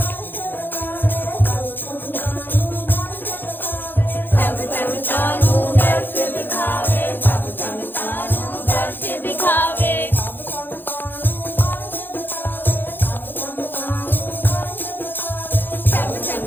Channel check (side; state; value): right; late; 0.096 ms